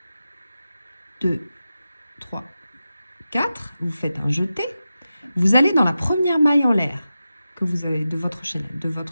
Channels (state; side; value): inverted; both; correlation -0.92